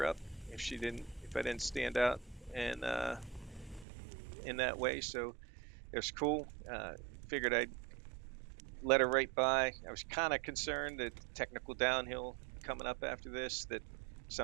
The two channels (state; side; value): drops out; left; at 3.9 s